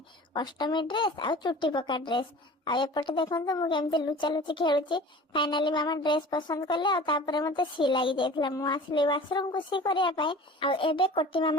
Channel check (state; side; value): normal; both; correlation 0.40